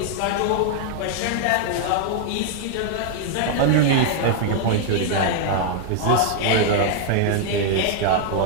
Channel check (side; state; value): both; different; correlation 0.00